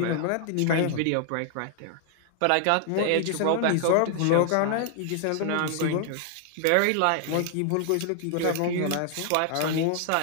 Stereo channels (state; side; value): different; both; correlation 0.00